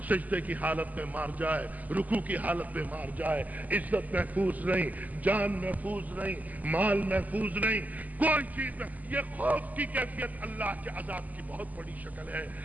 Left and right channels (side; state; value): left; late; 0.079 ms